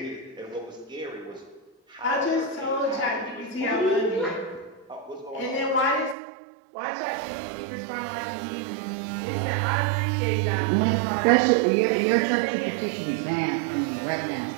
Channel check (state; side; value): drops out; left; at 6.2 s